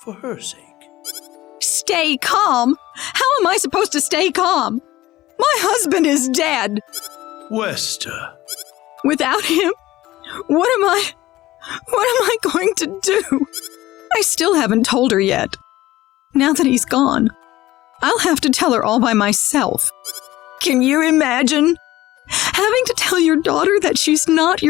for her sake. Stay calm? How am I supposed to stay calm? My husband is dead. Wester. Without him, what am I going to do? I still haven't told her yet. Now that he's gone, I'll have to tell her all by myself. Can you imagine having to tell your daughter that she's not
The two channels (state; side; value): quieter; right; 16.5 dB